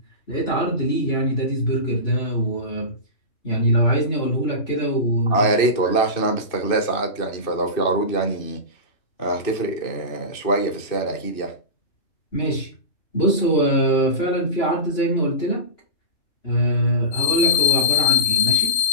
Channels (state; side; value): late; right; 2.6 ms